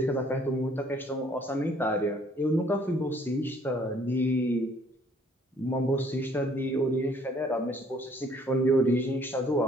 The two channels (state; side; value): normal; both; correlation 0.61